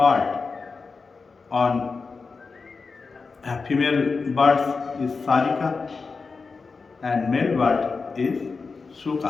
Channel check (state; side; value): quieter; right; 4.5 dB